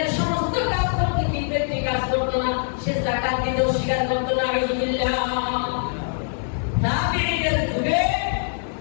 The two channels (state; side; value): silent; right; 55 dB below the other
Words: সমস্ত কাজ করতো কিন্তু একটি কাজ করতো না, সে যাকাত দিতেও স্বীকার করতো না। আলহামদুলিল্লাহ, তাবিঈদের যুগে